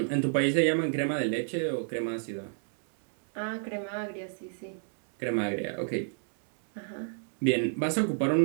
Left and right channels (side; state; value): left; silent; 58 dB below the other